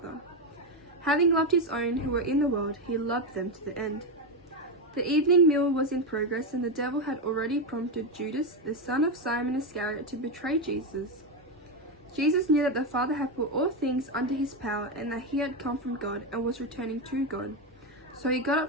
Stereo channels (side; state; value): both; normal; correlation 0.09